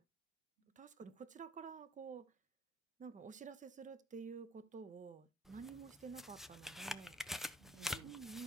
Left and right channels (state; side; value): normal; both; correlation 0.60